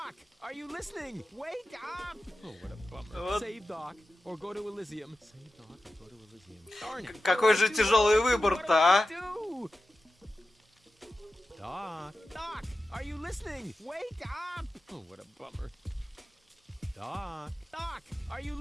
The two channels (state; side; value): normal; both; correlation 0.93